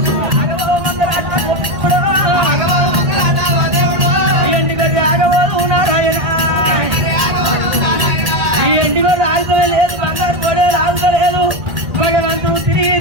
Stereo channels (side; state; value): left; late; 1.8 ms